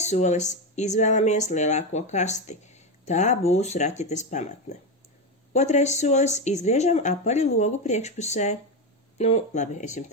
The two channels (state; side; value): normal; both; correlation 0.13